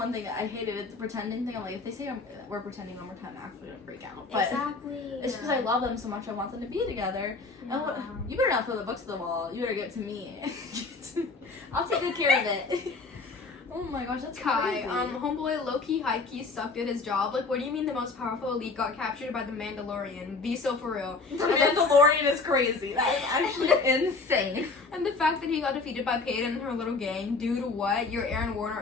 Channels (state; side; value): quieter; right; 3.9 dB